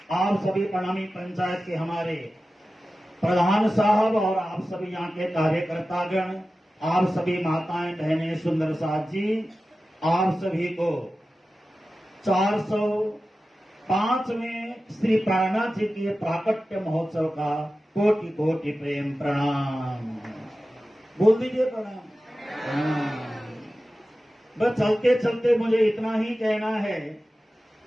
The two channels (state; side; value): normal; both; correlation 0.94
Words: आप सभी प्रणामी पंचायत के हमारे प्रधान साहब और आप सभी यहाँ के कार्यकर्तागण, आप सभी माताएं बहनें, सुंदर साथ जी, आप सभी को 405वें श्री प्राणनाथ जी के प्राकट्य महोत्सव का कोटि कोटि प्रेम प्रणाम। बोल दीजिए प्रणाम। बस चलते चलते मुझे इतना ही कहना है,